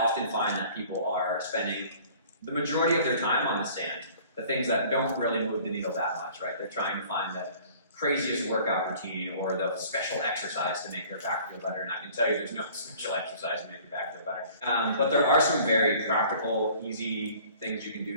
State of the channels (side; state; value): both; inverted; correlation -0.50